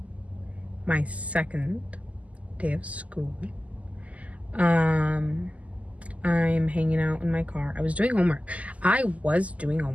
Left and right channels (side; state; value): left; late; 0.070 ms